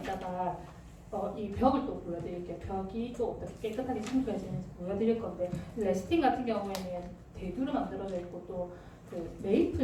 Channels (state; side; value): identical; both; correlation 1.00